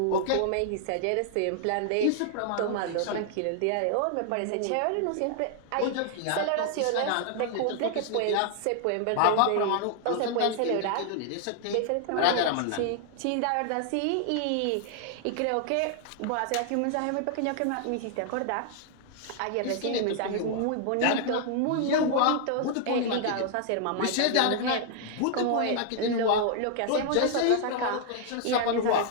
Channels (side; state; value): both; different; correlation 0.00